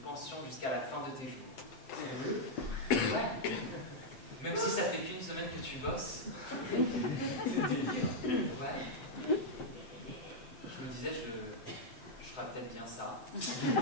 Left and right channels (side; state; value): right; late; 7.8 ms